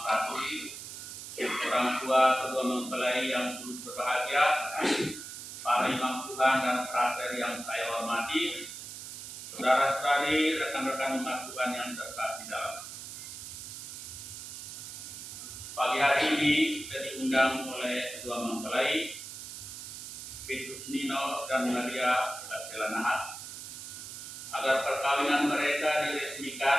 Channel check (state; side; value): noise; right; hiss, 10 dB below the sound